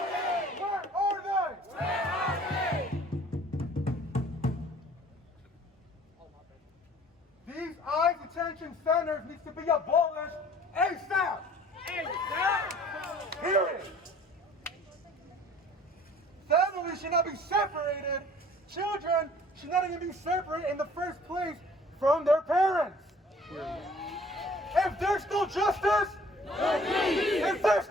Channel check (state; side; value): normal; both; correlation 0.52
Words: Where are they? These ICE detention centers need to be abolished ASAP. Period. Families should not be separated. Children should not even be separated in the first place from their parents. If there's no justice, if there's